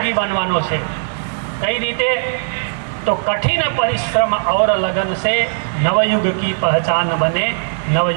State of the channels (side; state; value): left; silent; digital silence